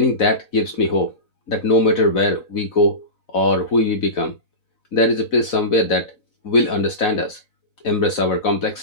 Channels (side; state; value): right; late; 4.0 ms